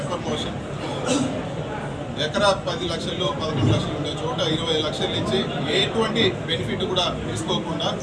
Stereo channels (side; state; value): both; identical; correlation 1.00